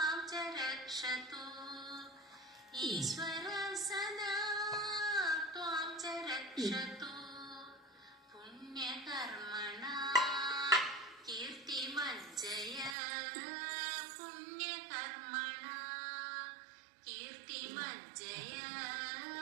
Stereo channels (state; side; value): drops out; left; at 13.0 s